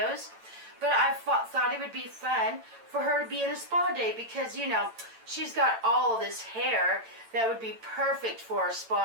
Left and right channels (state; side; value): late; left; 8.9 ms